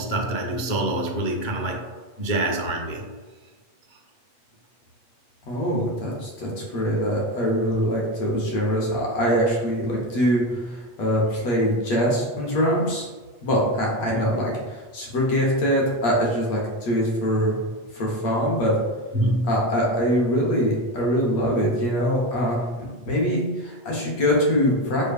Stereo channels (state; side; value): late; right; 8.2 ms